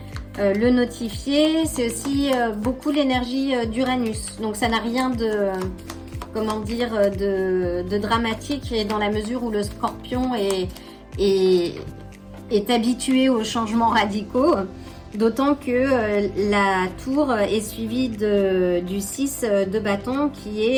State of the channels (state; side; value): identical; both; correlation 1.00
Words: le notifier. C'est aussi beaucoup l'énergie d'Uranus. Donc ça n'a rien de, comment dire, de dramatique, et dans la mesure où le scorpion est habitué aux changements radicaux. D'autant que la tour est suivie du 6 de bâton qui